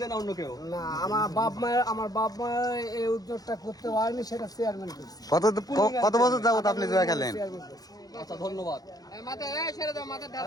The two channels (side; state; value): right; late; 0.18 ms